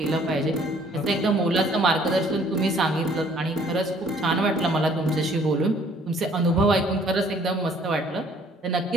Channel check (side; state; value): both; normal; correlation 0.59